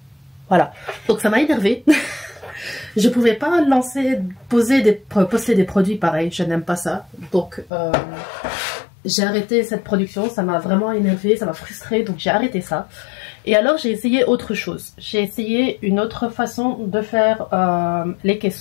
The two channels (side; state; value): right; drops out; at 7.7 s